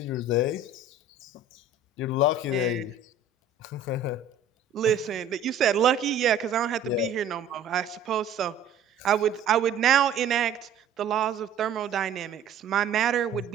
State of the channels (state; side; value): quieter; left; 4.6 dB